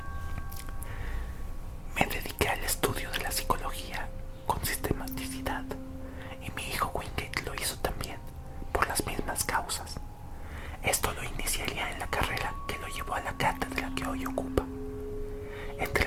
Me dediqué al estudio de la psicología con sistematicidad y mi hijo Wingate lo hizo también, por las mismas causas. Esto lo iniciaría en la carrera que lo llevó a la cátedra que hoy ocupa.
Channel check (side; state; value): both; identical; correlation 1.00